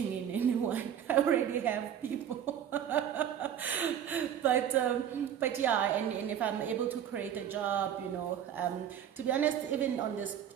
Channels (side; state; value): left; quieter; 9.6 dB